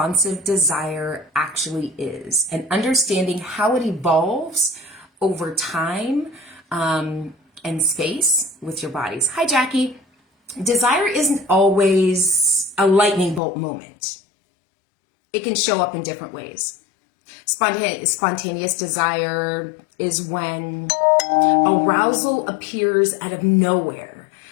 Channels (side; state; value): right; drops out; at 13.4 s